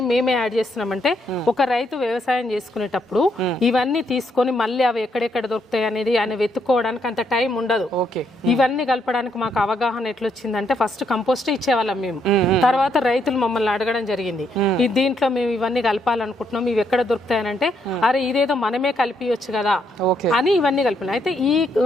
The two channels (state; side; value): normal; both; correlation 0.75